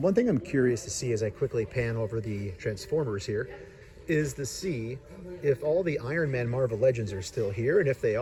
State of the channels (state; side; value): identical; both; correlation 1.00